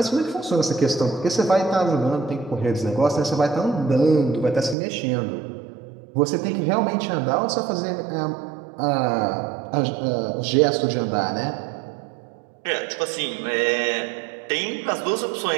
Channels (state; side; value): drops out; left; at 4.8 s